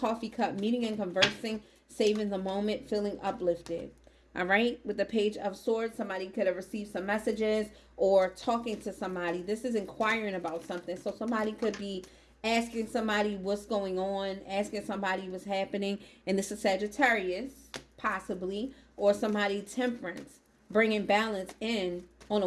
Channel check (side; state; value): both; identical; correlation 1.00